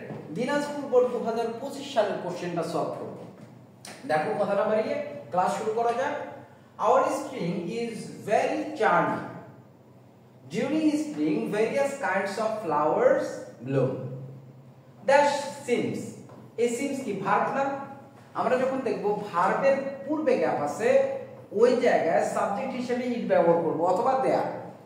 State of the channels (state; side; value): identical; both; correlation 1.00